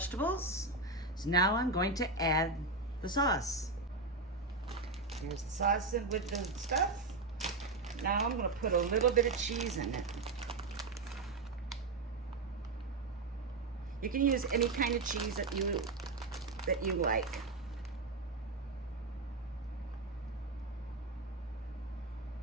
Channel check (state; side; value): quieter; left; 3.5 dB